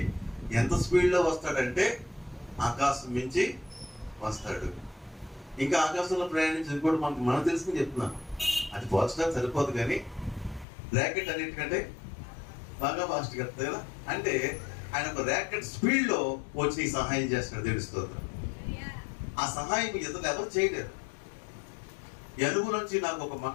ఎంత స్పీడ్లో వస్తాడంటే ఆకాశం మించి వస్తాడు. ఇంకా ఆకాశంలో ప్రయాణించి కూడా మనకు తెలుసుకుని చెప్తున్నాను. అది పోల్చడానికి సరిపోదు, కానీ ర్యాకెట్ అన్నిటికంటే బాగా ఫాస్ట్గా వస్తుంది కదా. అంటే ఆయన ఒక ర్యాకెట్ స్పీడ్లో వచ్చి సహాయం చేస్తున్నాడు. దేవుని స్తోత్రం. ఆ సహాయం ఇతరులు ఎవరు చేయలేరు. ఈ అనుభవం నుంచి నాకు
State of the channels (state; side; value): drops out; right; at 10.7 s